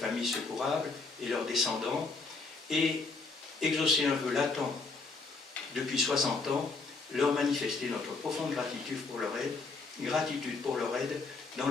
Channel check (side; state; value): right; quieter; 4.1 dB